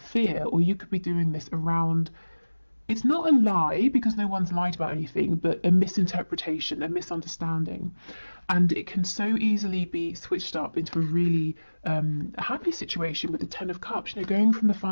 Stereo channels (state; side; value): inverted; both; correlation -1.00